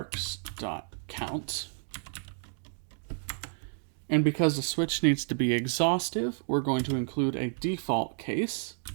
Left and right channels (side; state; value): left; silent; 57 dB below the other